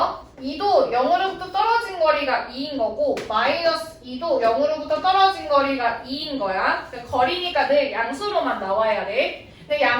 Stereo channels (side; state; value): both; identical; correlation 1.00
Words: 2도 0으로부터 떨어진 거리가 2인 거고 마이너스 2도 0으로부터 떨어진 거리가 2인 거야. 거리니까 늘 양수로만 나와야 돼. 근데